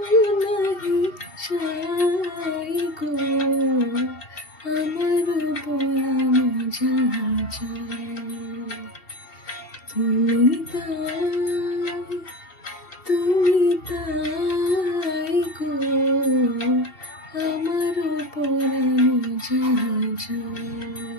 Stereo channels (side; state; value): right; late; 2.7 ms